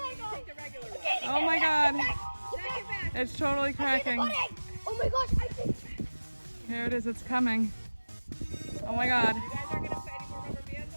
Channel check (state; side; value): inverted; both; correlation -1.00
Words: god. Oh my god. It's totally cracking. Oh my gosh, I think. Here it is, it's coming. Oh my god. You guys are gonna put any more rubber bands